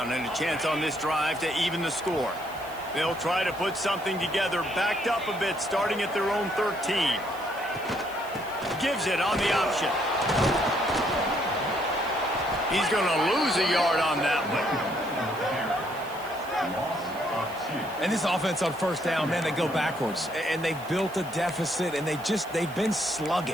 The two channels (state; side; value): noise; right; hiss, 20 dB below the sound